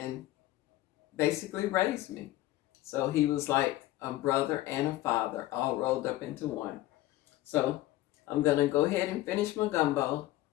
basically raised me. So he was like a brother and a father all rolled up into one. So I'm going to go ahead and finish my gumbo.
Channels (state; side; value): quieter; right; 16.2 dB